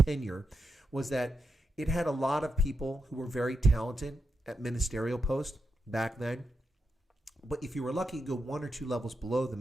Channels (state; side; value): normal; both; correlation 0.85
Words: was that it had a lot of people who were very talented at ministerial posts back then. But if you were lucky, you go one or two levels below the